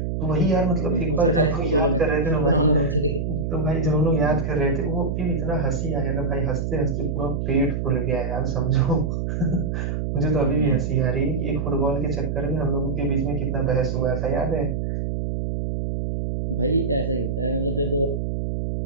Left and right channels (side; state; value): right; noise; hum, 1 dB below the sound